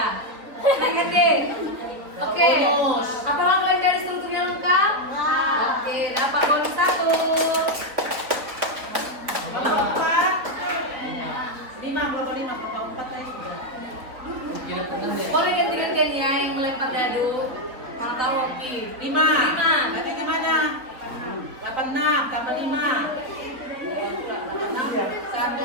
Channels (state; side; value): late; left; 4.1 ms